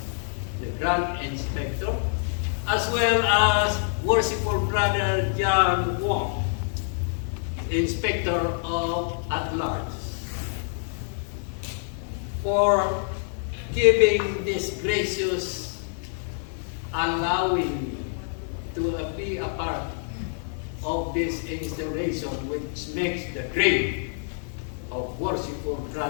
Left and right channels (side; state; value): right; silent; digital silence